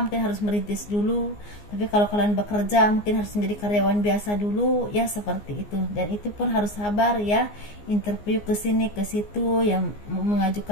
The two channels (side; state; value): right; late; 14 ms